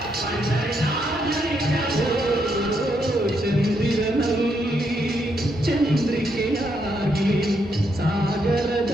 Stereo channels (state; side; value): normal; both; correlation 0.77